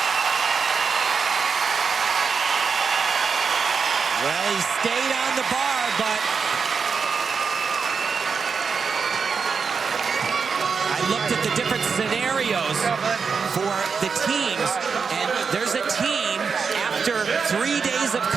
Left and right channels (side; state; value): left; quieter; 5.5 dB